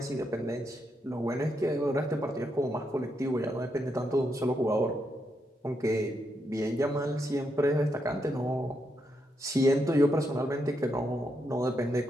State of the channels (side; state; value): both; normal; correlation 0.81